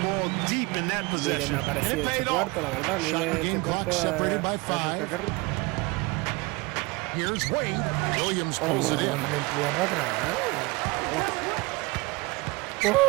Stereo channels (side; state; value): left; quieter; 25.2 dB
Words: deep in that possession. And it paid off. Shot game clock separated by 5. Here's Wade. Williams pulls it in.